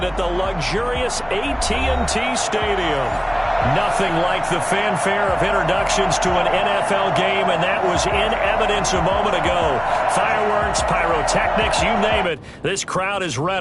at the luxurious AT&T Stadium. Nothing like the fanfare of introductions to an NFL game, and that was in evidence a moment ago. Fireworks, pyrotechnics, you name it. This crowd is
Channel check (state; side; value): identical; both; correlation 1.00